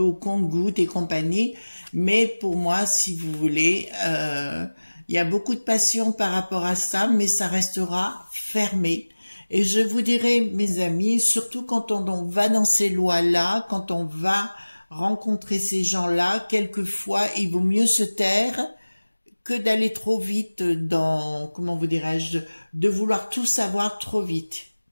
compte-gouttes et compagnie. Mais pour moi, si vous voulez, il y a beaucoup de passion par rapport à ça, mais ça restera fermé. Et je vous dirais, mes amis, surtout quand on va dans ces lois-là, quand on va rencontrer ces gens-là, quelquefois, il vaut mieux se taire que d'aller trop vite dans, comment vous dirais-je, de vouloir tout savoir trop vite.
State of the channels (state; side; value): inverted; both; correlation -1.00